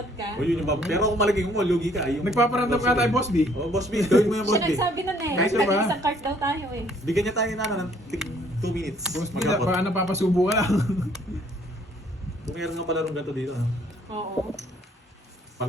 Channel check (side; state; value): both; normal; correlation 0.62